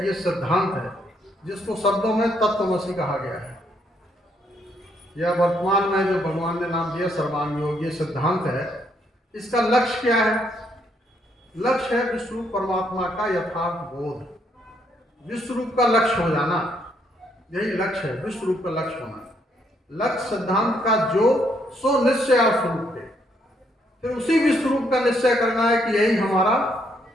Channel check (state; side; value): normal; both; correlation 0.72